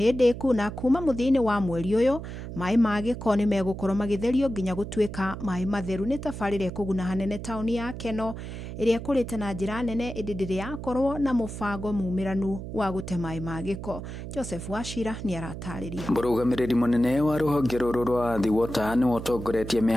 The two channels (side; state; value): right; noise; hum, 9 dB below the sound